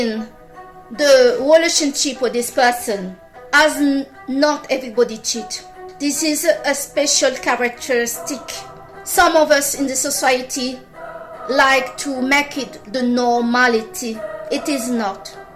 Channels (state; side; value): identical; both; correlation 1.00